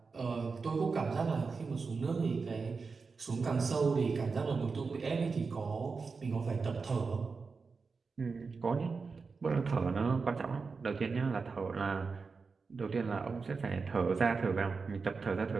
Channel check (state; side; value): quieter; left; 4.7 dB